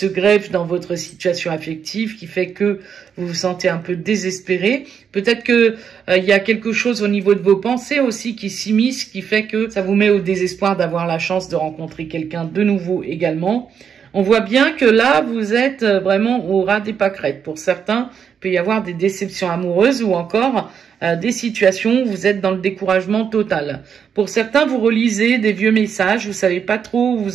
greffe dans votre situation affective, qui fait que vous vous sentez un peu désespéré. Peut-être que il y a quelque chose au niveau de vos pensées aussi qui s'immisce, qui fait que ça vous met au désespoir d'avoir la chance de rencontrer quelqu'un de nouveau également. On voit bien que là, vous êtes vraiment au ras des pâquerettes. Pour certains, il peut y avoir des déceptions amoureuses ou encore des situations où vous êtes dans le découragement total. Pour certains, vous relisez des vieux messages, vous savez pas trop où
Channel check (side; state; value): left; quieter; 7.3 dB